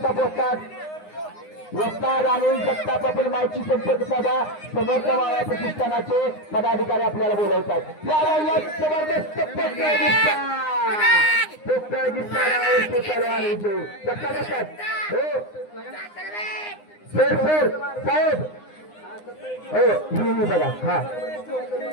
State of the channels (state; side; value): late; right; 9.7 ms